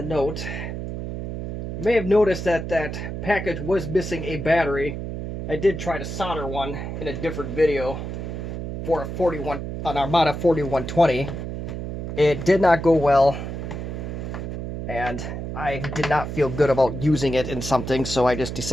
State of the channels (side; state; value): right; noise; hum, 6 dB below the sound